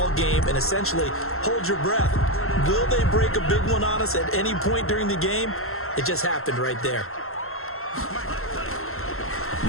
game and essentially hold your breath. Will they break a big one on us at any point during the game? It just happened right there.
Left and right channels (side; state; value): right; late; 0.62 ms